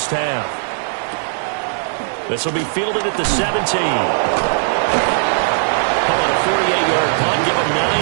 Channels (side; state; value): left; silent; digital silence